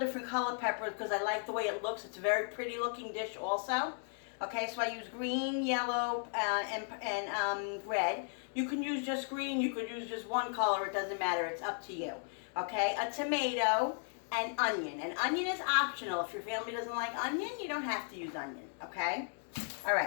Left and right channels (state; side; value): silent; right; 54 dB below the other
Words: color peppers because I like the way it looks. It's a very pretty looking dish also. Okay, so I use green, yellow, and red. You can use just green, you could use just one color, it doesn't matter, it's up to you. Okay, a tomato and onion. And onion is optional. If your family doesn't like onion, you don't have to use onion, okay? All